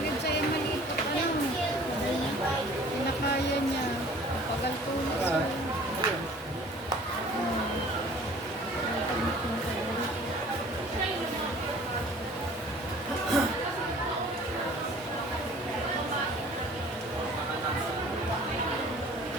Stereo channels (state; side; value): normal; both; correlation 0.50